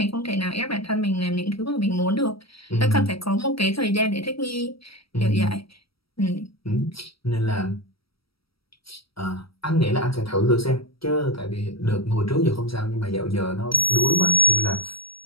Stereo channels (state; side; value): late; right; 0.75 ms